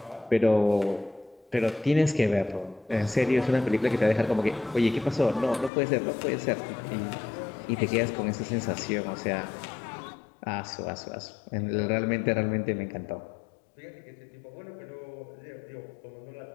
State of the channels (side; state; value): right; drops out; at 5.7 s